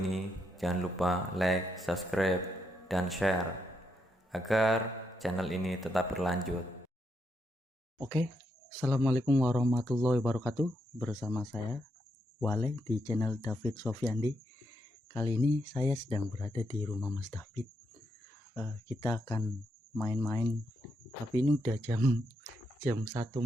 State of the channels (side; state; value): both; normal; correlation 0.80